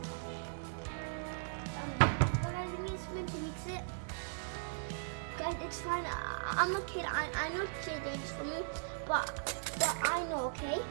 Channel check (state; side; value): silent; left; digital silence